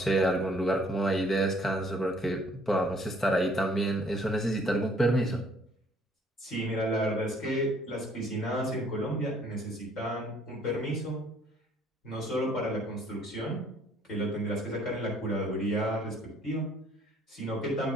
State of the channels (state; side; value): normal; both; correlation 0.60